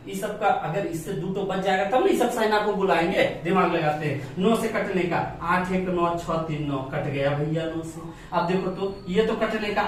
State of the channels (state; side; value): identical; both; correlation 1.00